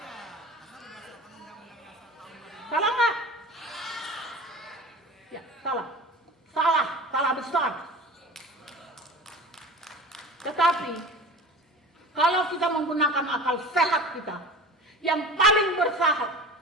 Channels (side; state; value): both; normal; correlation 0.37